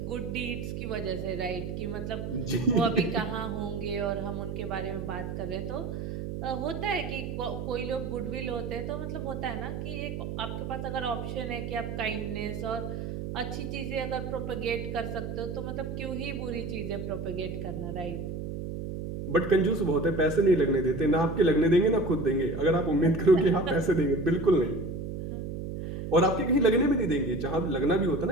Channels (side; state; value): right; noise; hum, 5 dB below the sound